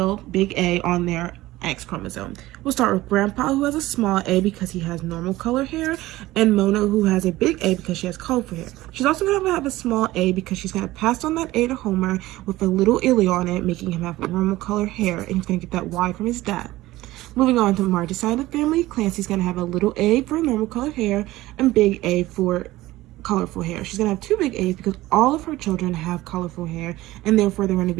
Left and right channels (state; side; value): quieter; left; 17.4 dB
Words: big A, on their X chromosome. We'll start with Grandpa, who has a small A because he has normal color hair, and Mona, who has a big A because she has colorful hair. She's also going to have a small A because she's going to pass on that A to Homer with a little allele on it, making him have normal color hair, and he's going to get that Y from his dad. Moving on to Marge's side of the family, Clancy's going to have a little A for normal colored hair and big A for colorful hair. She's going to have two big A's because all of her children have colorful hair, and therefore they're going to